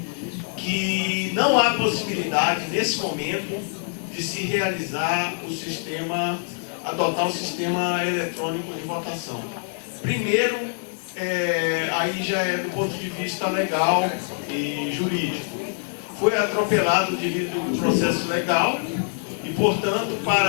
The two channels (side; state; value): right; silent; 56 dB below the other